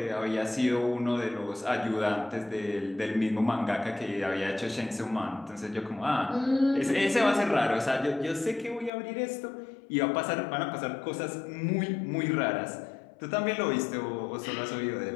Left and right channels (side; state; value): right; drops out; at 8.9 s